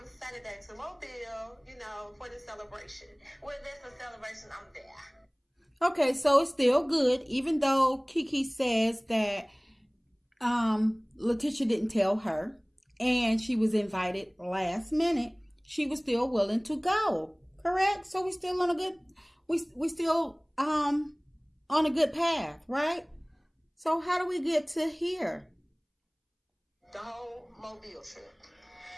Saturday to Mobile, for the celebration? Well, there's a celebration, I'm there. Okay, so it's still good, even though KEKE says that Latisha didn't tell her and she was invited last minute. She was still willing to go, correct? So we're still on a good, we still on a good path, right? So how do we get to here? The whole Mobile trip.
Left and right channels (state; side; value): identical; both; correlation 1.00